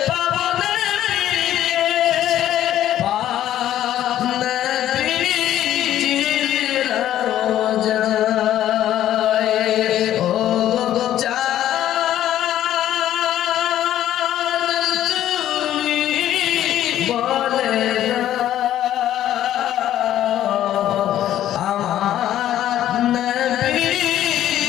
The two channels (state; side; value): quieter; right; 12.1 dB